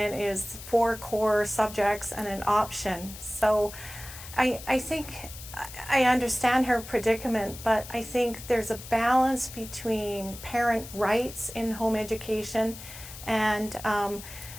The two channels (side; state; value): left; noise; hiss, 14 dB below the sound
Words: is 4 core subjects and an option. So I think I understand her predicament, but I think there's a balance between parent rights in home education and